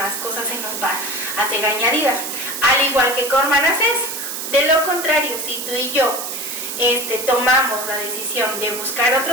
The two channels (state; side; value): noise; right; hiss, 5 dB below the sound